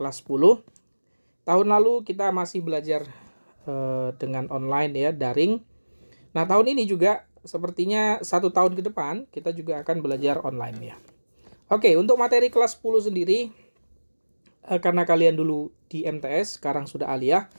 10. Tahun lalu kita masih belajar dengan online ya, daring. Nah, tahun ini juga sepertinya 1 tahun ke depan kita juga akan belajar online ya. Oke, untuk materi kelas 10 sendiri, karena kalian dulu di MTS, sekarang sudah aliyah,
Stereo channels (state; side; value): inverted; both; correlation -1.00